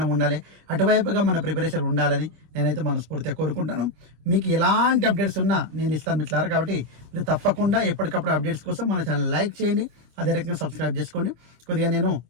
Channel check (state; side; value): late; left; 26 ms